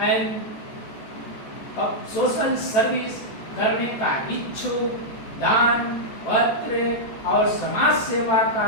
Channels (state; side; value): late; right; 14 ms